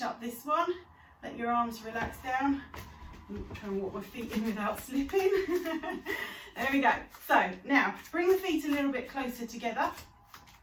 up this one. Let your arms relax down. I'm trying to walk my feet in without slipping. There we go. So now bring the feet a little bit closer together,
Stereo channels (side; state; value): both; identical; correlation 1.00